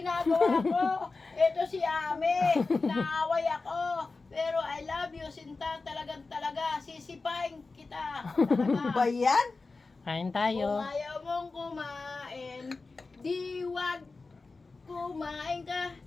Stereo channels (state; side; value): quieter; right; 3.9 dB